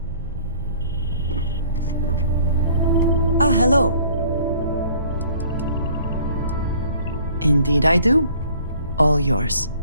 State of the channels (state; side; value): inverted; both; correlation -0.55